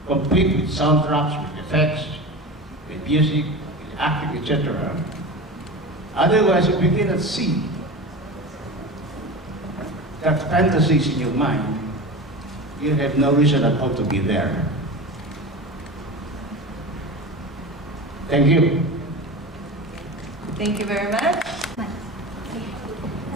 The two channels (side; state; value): both; normal; correlation 0.29